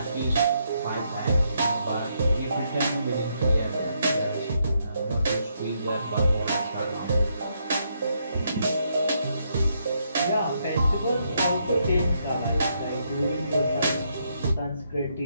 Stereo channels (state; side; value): inverted; both; correlation -0.77